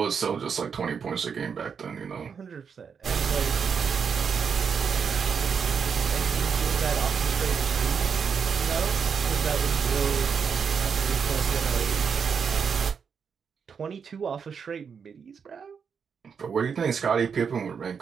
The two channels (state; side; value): quieter; left; 6.4 dB